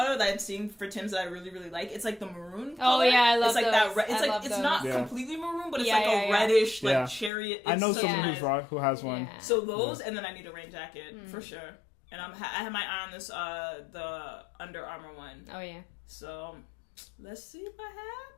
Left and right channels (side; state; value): right; drops out; at 7.3 s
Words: that I'm seeing for Tim's that I really really like. It's like the maroon color. Oh yeah, I love it's like those. that. It's like it's not completely maroon, but it's like a reddish like chariot. I know someone who has one. Yeah. So those, and then I need a rain jacket for sure. And I have my eye on this the Under Armour one. Oh yeah. So let's see what